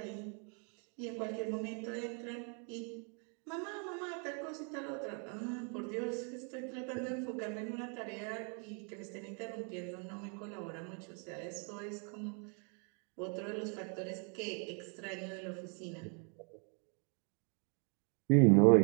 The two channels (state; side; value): quieter; left; 39.2 dB